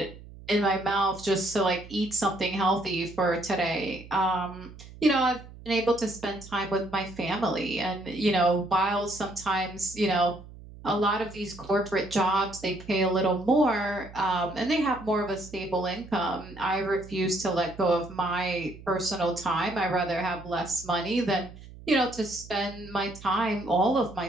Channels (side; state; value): right; noise; hum, 17 dB below the sound